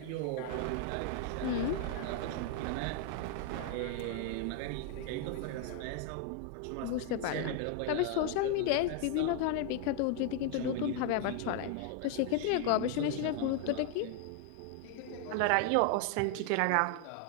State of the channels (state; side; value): different; both; correlation 0.00